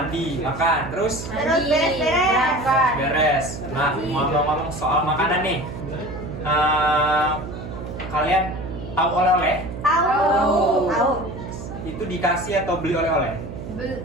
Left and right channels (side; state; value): right; noise; hum, 10 dB below the sound